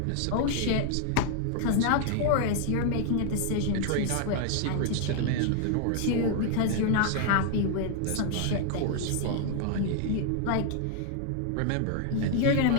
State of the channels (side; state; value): both; different; correlation 0.00